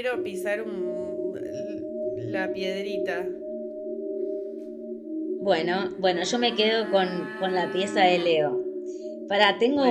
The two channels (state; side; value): identical; both; correlation 1.00